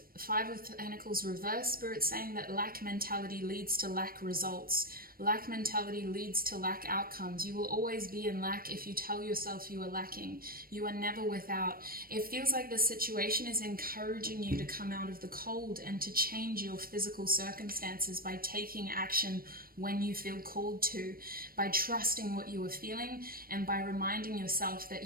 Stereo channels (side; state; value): left; late; 0.43 ms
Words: 5 of Pentacles reverse, Spirit saying that lack mentality leads to lack results. Lack mentality leads to lack outcomes. You will always be in lack if you tell yourself you are lacking. You are never without. It feels like the situation is encouraging you to come out of the cold and to change your physical circumstances by taking action when you feel called to, by trusting what you are feeling and by reminding yourself that